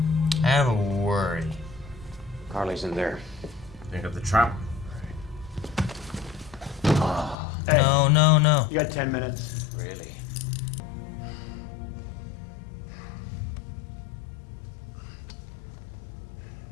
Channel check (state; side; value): drops out; right; at 7.4 s